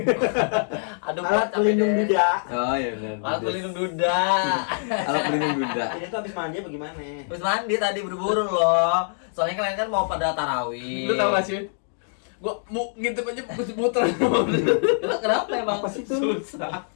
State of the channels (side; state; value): right; silent; digital silence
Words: Alat pelindung duda. Oh iya benar. Alat pelindung duda. Alat pelindung duda. Ini tuh habis mandi bagaimana? Habis mandi tadi buru-buru loh. Soalnya kalian kan mau pada tarawih. Lu tau gak sih? Gua mau ngintip aja muter. Kenapa emang? Apa sih itu? Susah.